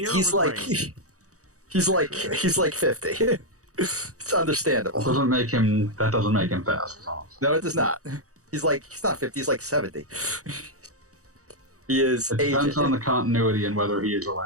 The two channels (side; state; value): left; late; 0.66 ms